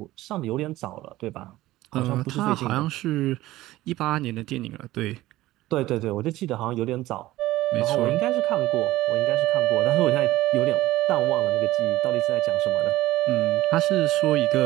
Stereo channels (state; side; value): quieter; left; 16.6 dB